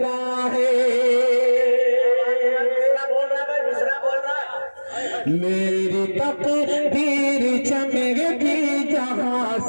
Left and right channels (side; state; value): both; inverted; correlation -1.00